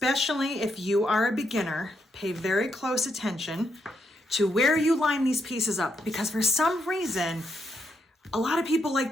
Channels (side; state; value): both; normal; correlation 0.79